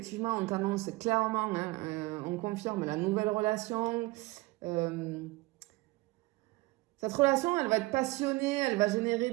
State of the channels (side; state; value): left; quieter; 21.6 dB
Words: on t'annonce clairement, hein, on confirme la nouvelle relation. Cette relation, elle va être passionnée, elle va générer